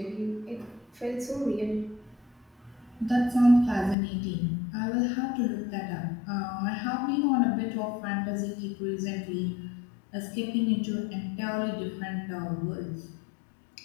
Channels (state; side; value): drops out; right; at 4.0 s